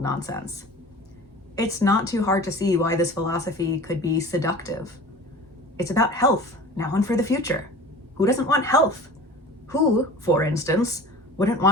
nonsense. It's not too hard to see why this philosophy could be seductive. It's about health, now and for the future. Who doesn't want health? Who, for instance, wouldn't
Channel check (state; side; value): normal; both; correlation 0.39